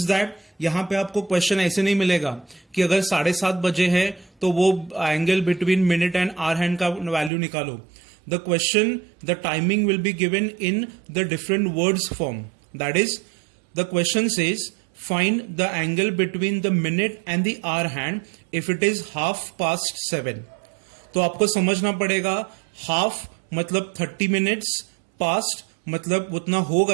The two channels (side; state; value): left; drops out; at 7.3 s